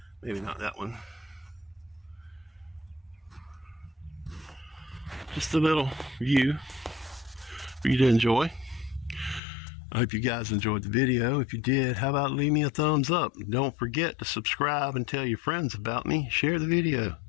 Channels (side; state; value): right; drops out; at 9.4 s